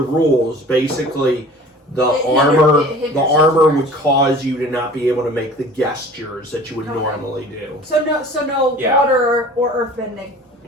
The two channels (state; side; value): normal; both; correlation 0.44